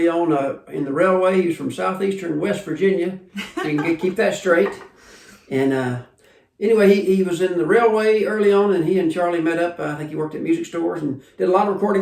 on in the railway. He was from southeastern West Virginia, so you can keep that straight. And anyway, he was in the railway early on, and he and Charlie met up. I think he worked at music stores and did a lot of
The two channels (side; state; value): both; identical; correlation 1.00